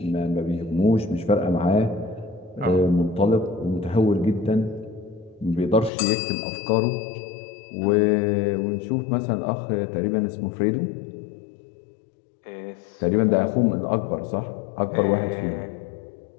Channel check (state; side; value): drops out; right; at 5.9 s